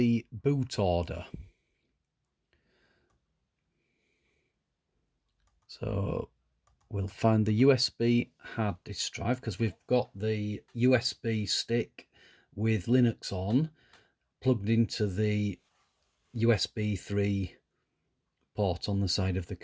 boot order. So we'll find the USB hard disk drive, because we've got the USB stick with Linux on plugged into the USB 3 port on the side of the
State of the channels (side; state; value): both; identical; correlation 1.00